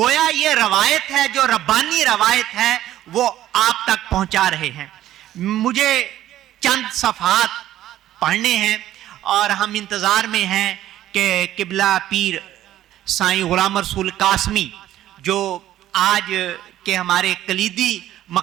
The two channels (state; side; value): quieter; left; 13.1 dB